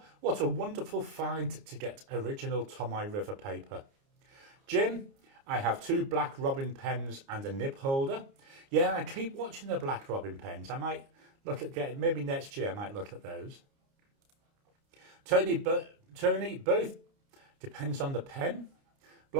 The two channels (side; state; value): left; late; 29 ms